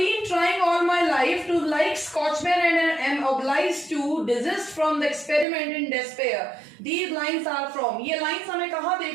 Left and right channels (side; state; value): left; drops out; at 5.5 s